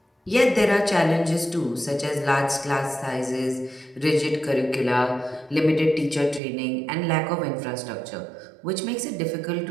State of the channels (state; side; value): drops out; left; at 6.4 s